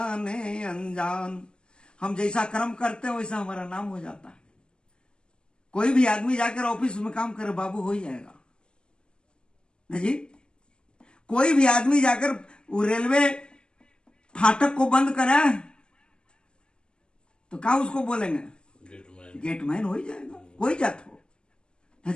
अनजान। हम जैसा कर्म करते हैं वैसा हमारा नाम हो जाता है। कोई भी आदमी जाकर ऑफिस में काम करे, बाबू हो ही जाएगा ना जी। कोई भी आदमी जाकर वो रेलवे फाटक को बंद करे तो क्या उसको बोलेंगे? गेटमैन हो ही जाएगा, कोई जात हो ना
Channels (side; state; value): right; late; 0.052 ms